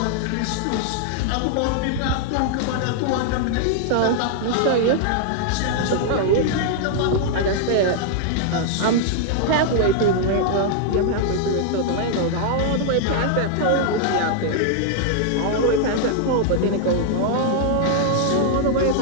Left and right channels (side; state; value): both; different; correlation 0.00